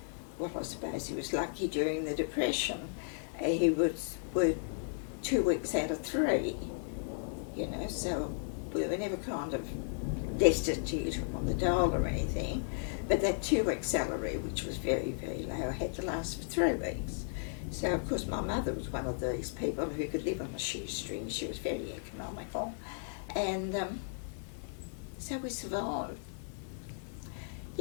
well, I suppose he was lucky during the Depression. He was worked 2 weeks out of 3, so we were never kind of destitute on the dole or anything, but that 2-week salary, which was very, very low, had to last for 3 weeks. So, of course, my mother was one of these people who could live on a shoestring. She was very economical, and so we survived.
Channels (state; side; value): silent; right; digital silence